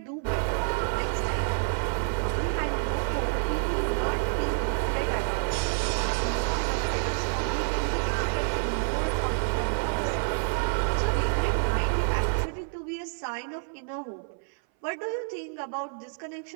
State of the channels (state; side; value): silent; left; 59 dB below the other